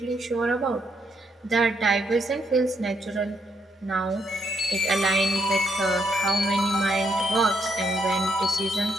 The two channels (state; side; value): normal; both; correlation 0.76